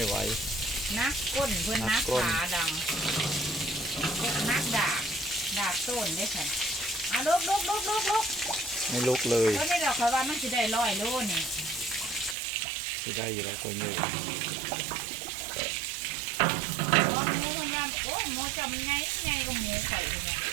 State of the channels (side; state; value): left; drops out; at 12.4 s